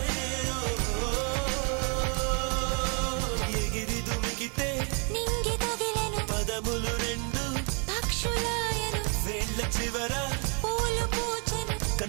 ఎగిరి దుమికితే నింగి తగిలెను పదములు రెండు పక్షులాయను వేళ్ళ చివర పూలు పూచెను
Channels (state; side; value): quieter; left; 37.2 dB